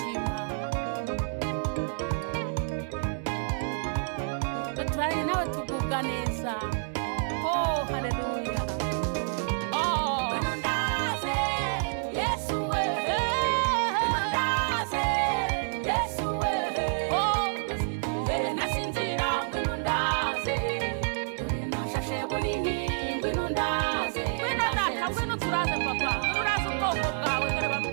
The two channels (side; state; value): left; silent; 59 dB below the other